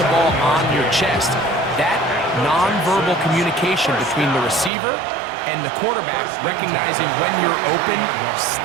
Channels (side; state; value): left; drops out; at 4.7 s